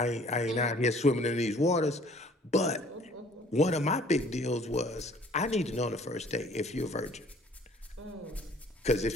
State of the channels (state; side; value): normal; both; correlation 0.54